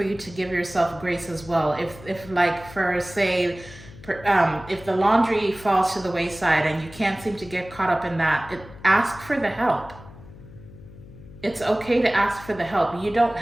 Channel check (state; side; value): noise; left; hum, 18 dB below the sound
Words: you to give yourself grace as well. If like, for say, if the laundry falls to the wayside and you can't seem to get caught up in that, ask for the help. It's okay to ask for the help. You don't